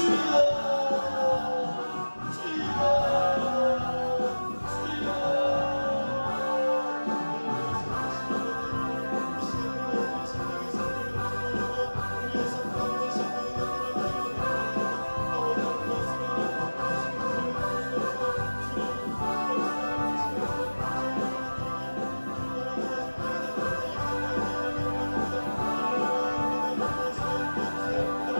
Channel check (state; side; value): inverted; both; correlation -1.00